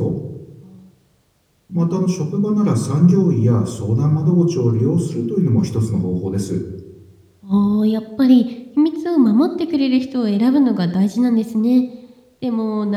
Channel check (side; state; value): both; identical; correlation 1.00